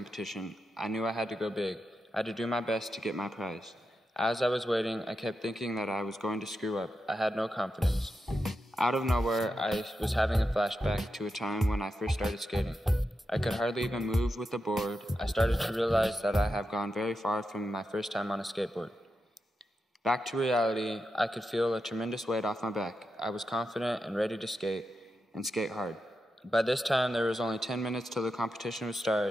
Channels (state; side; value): normal; both; correlation 0.88